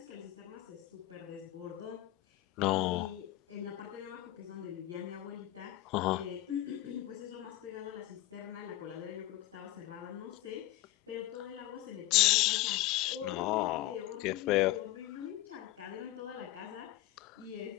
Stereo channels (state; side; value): quieter; right; 15.7 dB